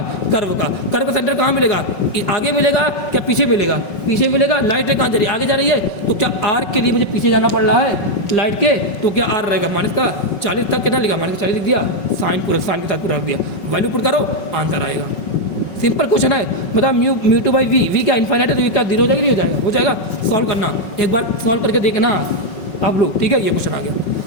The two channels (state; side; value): late; right; 5.4 ms